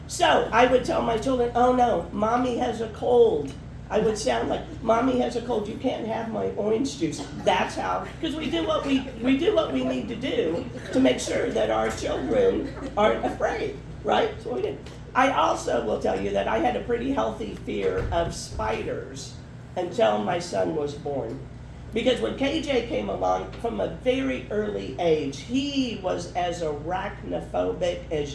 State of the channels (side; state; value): both; identical; correlation 1.00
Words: So I would tell my children, oh no, mommy has a cold. I would sound like, mommy has a cold, you can't have my orange juice. That's how, because we do what we need to do to make sure that our children aren't afraid, right? So we did. I also will tell you that I had a pretty healthy fear of spiders until my son was born. Because when KJ came along, from a very early age, he was as arachnophobic